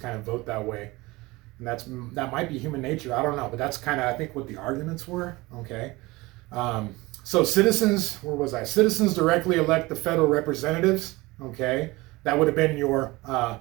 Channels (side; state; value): left; quieter; 21.7 dB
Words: kind of vote that way, and that might be human nature. I don't know, but that's kind of, I think, what the arguments were. Okay, so citizens, where was I? Citizens directly elect the federal representatives. Okay, that would have been your